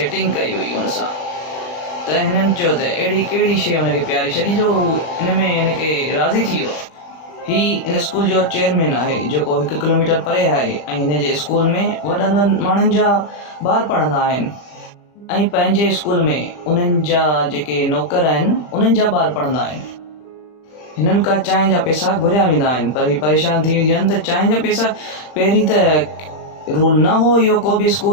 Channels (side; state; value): right; late; 40 ms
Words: कई हुई हुन सां। त हिननि चयो त अहिड़ी कहिड़ी शइ हुनखे प्यारी छॾी जो हिन में हिनखे राज़ी थी वियो। हीउ हिन स्कूल जो चेयरमैन आहे जेको 1 किलोमीटर परे आहे ऐं हिन जे स्कूल में वॾनि वॾनि माण्हुनि जा ॿार पढ़ंदा आहिनि ऐं पंहिंजे स्कूल में उन्हनि जा जेके नौकर आहिनि उन्हनि जा ॿार पढ़ंदा आहिनि। हिननि खां चांहि जा पैसा घुरिया वेंदा आहिनि, पर हीअ परेशान थी वेंदियूं आहिनि त चांहि जा पैसा पहिरीं त रूल न हो इहो को बि